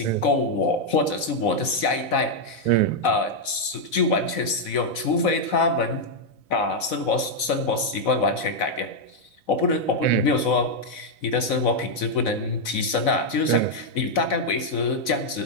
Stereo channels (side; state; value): right; late; 4.0 ms